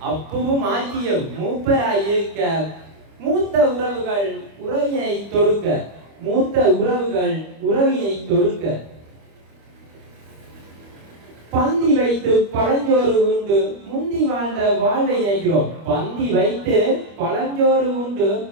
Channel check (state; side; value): late; left; 25 ms